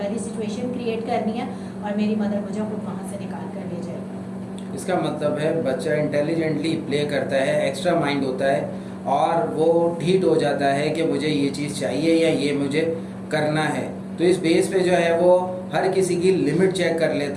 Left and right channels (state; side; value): identical; both; correlation 1.00